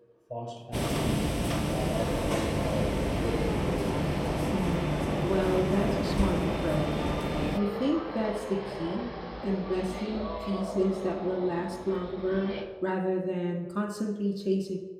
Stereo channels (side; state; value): both; identical; correlation 1.00